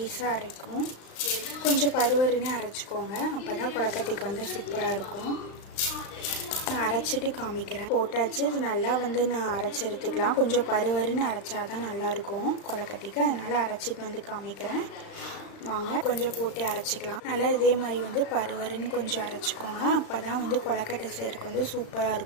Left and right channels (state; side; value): late; right; 35 ms